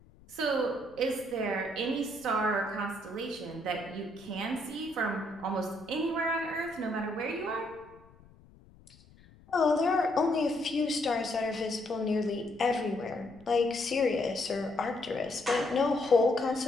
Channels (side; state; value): left; noise; rumble, 25 dB below the sound